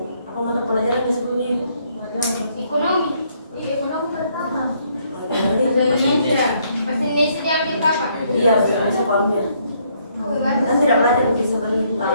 Apa mata pelajaran yang sebelumnya ibu? Ekonomi. Ekonomi pertama. Bahasa Indonesia. Bahasa Indonesia diambil kapan? Iya, masih sekolahnya. Kan tidak belajar lebih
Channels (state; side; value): inverted; both; correlation -0.70